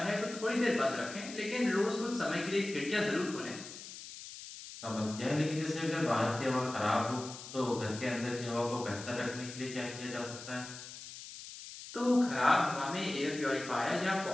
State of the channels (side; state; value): left; noise; hiss, 12 dB below the sound